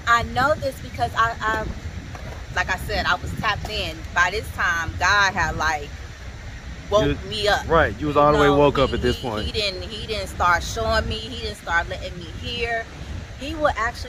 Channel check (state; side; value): identical; both; correlation 1.00